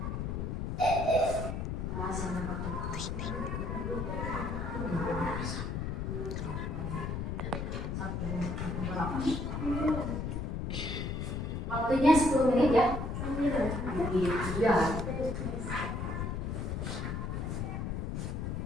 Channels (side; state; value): left; noise; rumble, 2 dB below the sound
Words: Waktunya 10 menit ya. Iya.